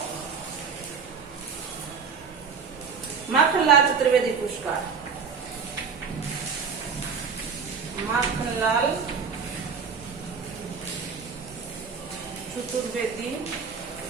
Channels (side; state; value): left; quieter; 5.9 dB